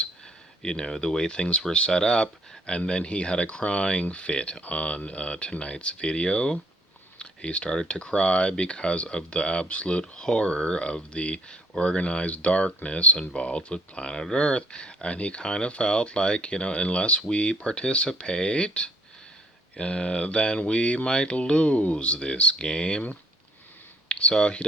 the way things were set up, and then he had a crying fit on tonight's video. He started to cry because of the absolute horror of the organized darkness involved with planet Earth. And he kind of felt like, unless we participate, then we might lose this game. So he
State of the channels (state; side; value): normal; both; correlation 0.63